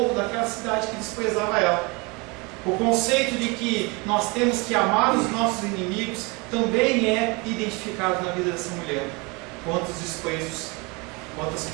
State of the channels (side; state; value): left; quieter; 27.9 dB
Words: daquela cidade que desprezava ela. O conceito de que nós temos que amar os nossos inimigos também é identificado na vida dessa mulher. Quantos desprezos, quantas